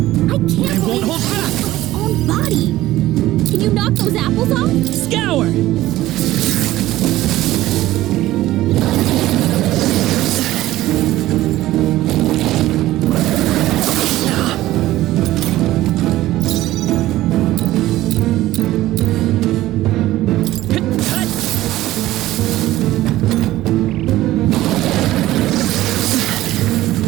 I can't believe hold back from its own body. Can you knock those apples off? Scour!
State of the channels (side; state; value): left; quieter; 15.7 dB